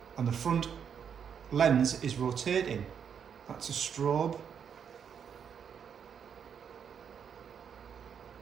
and the front lens is rotating. That's a strobe.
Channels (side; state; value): left; quieter; 7.5 dB